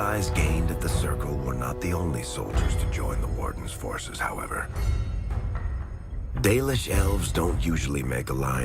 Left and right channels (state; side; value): identical; both; correlation 1.00